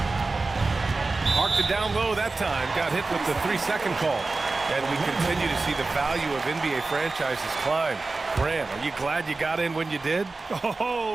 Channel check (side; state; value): left; quieter; 3.6 dB